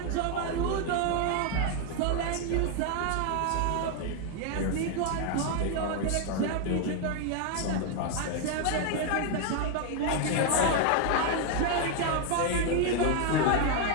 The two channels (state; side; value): different; both; correlation 0.01